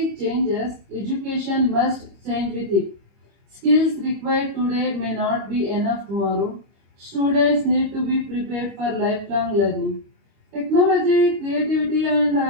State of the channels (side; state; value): left; late; 25 ms